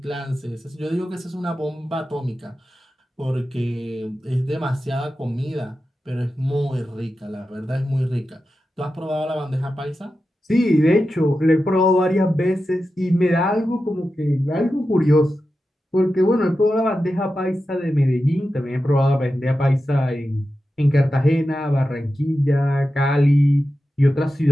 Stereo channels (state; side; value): normal; both; correlation 0.91